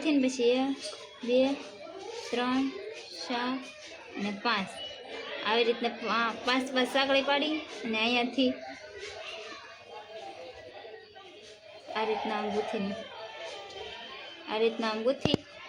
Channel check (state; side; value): identical; both; correlation 1.00